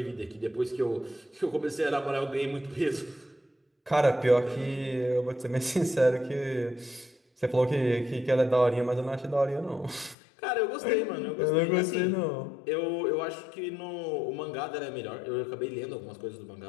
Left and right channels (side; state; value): right; drops out; at 10.2 s